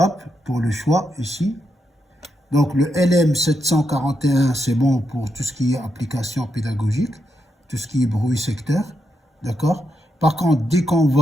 pour le choix, ici. Donc le LM741, c'est bon pour tout ce qui est application pédagogique, tout ce qui est bruit secteur. D'accord? Par contre, dès qu'on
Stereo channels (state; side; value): normal; both; correlation 0.83